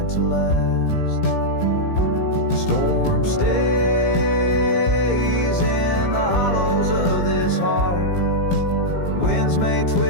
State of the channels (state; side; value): late; right; 17 ms